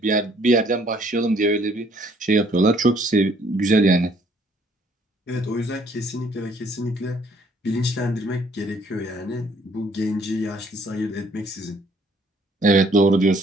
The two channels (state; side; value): normal; both; correlation 0.62